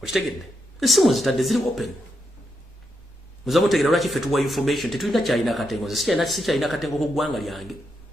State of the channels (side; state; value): both; normal; correlation 0.82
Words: okitegedde essimu zitadde ziri open muza mutegeera lwaki ffe tuwa information tetulina kyalina katengo nze sikyalina katengo ku ggwanga lyange